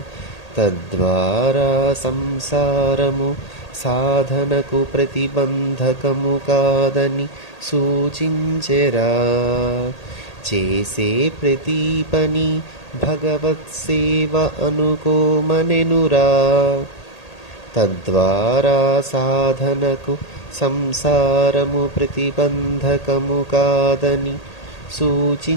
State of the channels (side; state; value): right; late; 1.8 ms